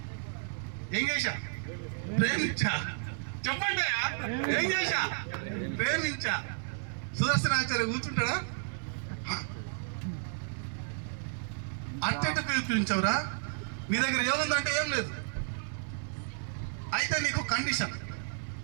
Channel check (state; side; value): silent; left; digital silence